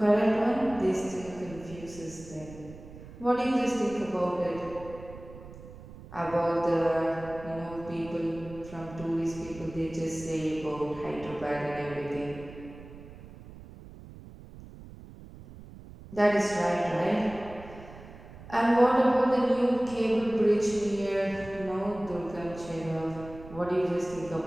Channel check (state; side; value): noise; right; rumble, 17 dB below the sound